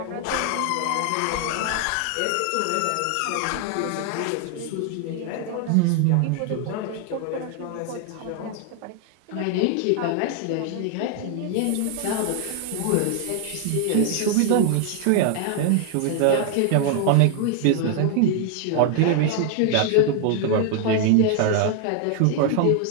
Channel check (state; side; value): different; both; correlation 0.00